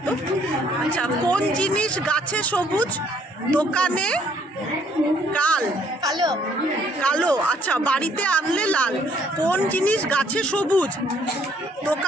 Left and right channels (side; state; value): both; normal; correlation 0.64